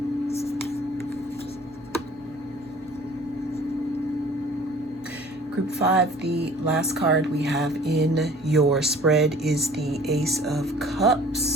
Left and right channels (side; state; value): both; normal; correlation 0.49